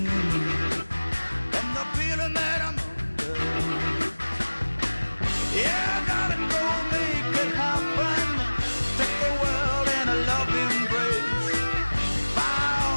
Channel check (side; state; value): both; inverted; correlation -1.00